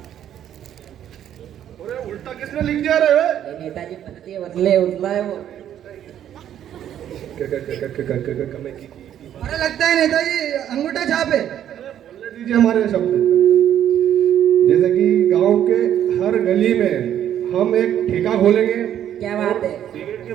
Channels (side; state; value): left; quieter; 10.6 dB